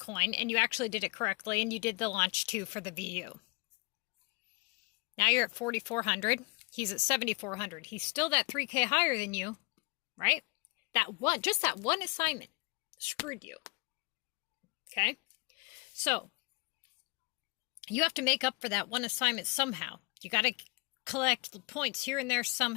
and you actually did it correctly and you did the launch 2 for the VU. Now you're at 4,400. He's at 7,400. He's still that 3K higher than you, right? Just that one assignment screwed you. Okay? So, you have to make up for that one assignment somehow. You got to collect the points here and there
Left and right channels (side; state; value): right; quieter; 29.3 dB